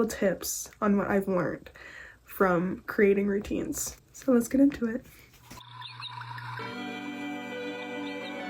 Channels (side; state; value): both; identical; correlation 1.00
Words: tips on what I've learned from creating routines. So let's get into it.